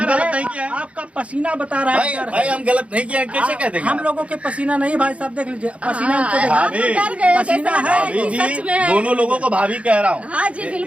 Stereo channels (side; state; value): left; late; 0.063 ms